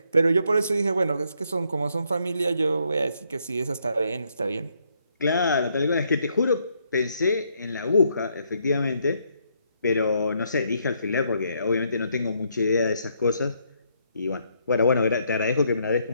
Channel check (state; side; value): inverted; both; correlation -0.73